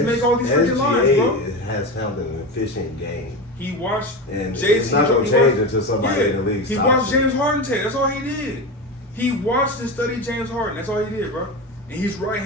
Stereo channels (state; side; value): normal; both; correlation 0.22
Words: make all these freaking lines, bro. has found an efficient game. He watched And JC. it's not going to change until somebody in the league He stops watched it. James Harden take. That's all he did. He watched and studied James Harden. That's all he did, bro. And he's